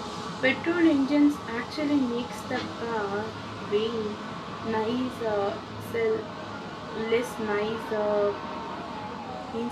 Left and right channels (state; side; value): identical; both; correlation 1.00